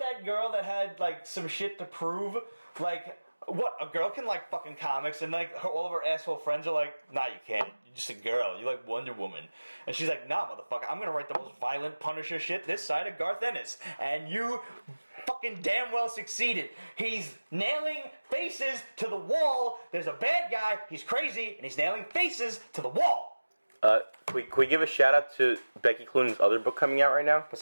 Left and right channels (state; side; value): inverted; both; correlation -1.00